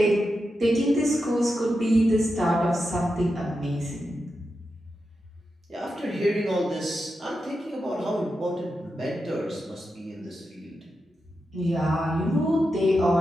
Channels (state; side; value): normal; both; correlation 0.88